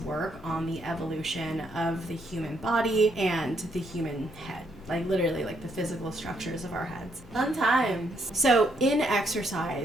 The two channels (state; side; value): normal; both; correlation 0.74